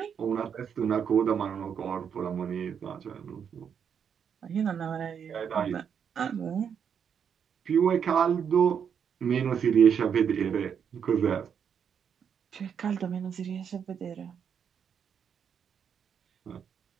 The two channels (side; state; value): left; quieter; 7.5 dB